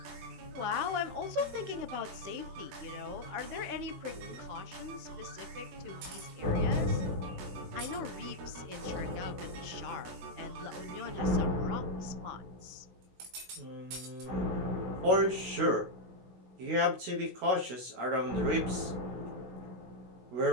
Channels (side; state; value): left; late; 16 ms